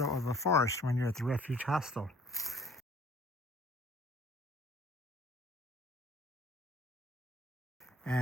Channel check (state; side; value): normal; both; correlation 0.54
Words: of a forest when you're at the Refuge Hostel.